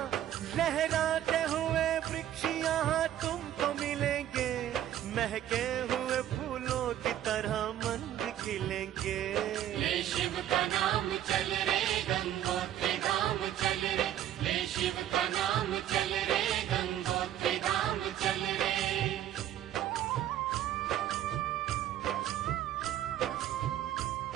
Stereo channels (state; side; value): quieter; left; 11.7 dB